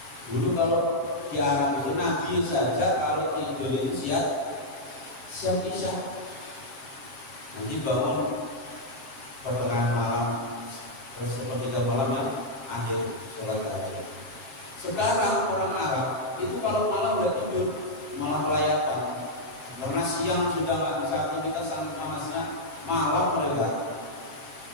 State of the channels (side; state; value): right; late; 8.4 ms